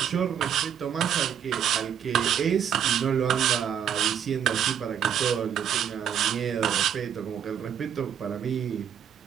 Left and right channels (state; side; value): quieter; left; 8.8 dB